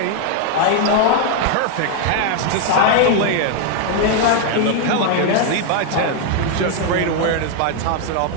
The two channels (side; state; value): both; different; correlation 0.00